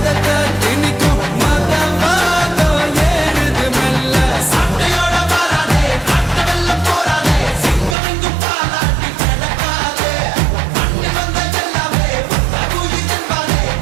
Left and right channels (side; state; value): left; drops out; at 8.0 s